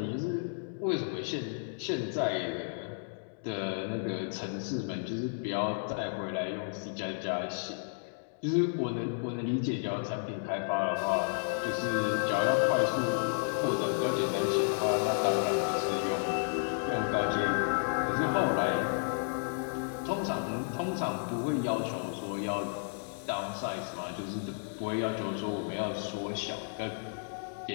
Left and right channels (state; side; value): silent; right; digital silence